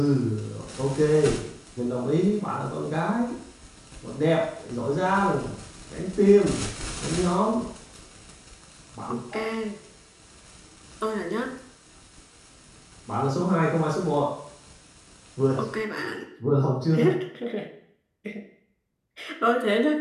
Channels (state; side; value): identical; both; correlation 1.00